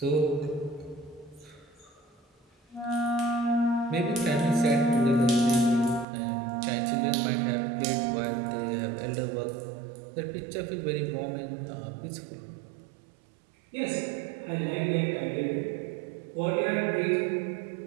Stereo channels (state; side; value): drops out; left; at 6.1 s